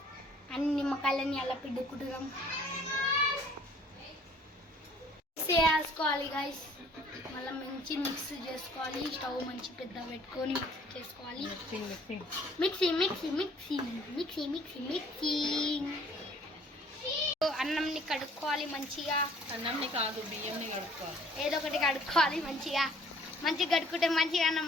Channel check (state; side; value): normal; both; correlation 0.57